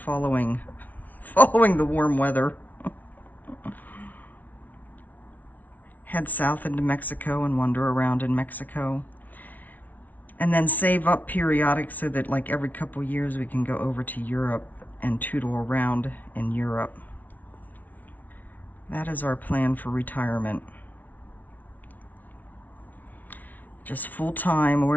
the warm weather. Head south into Mexico and wander around in Mexico. And then save up periodic so that like every couple years we can go over to Europe and tootle around in Europe. That is our plan for retirement. Just full-time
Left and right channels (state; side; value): late; right; 0.077 ms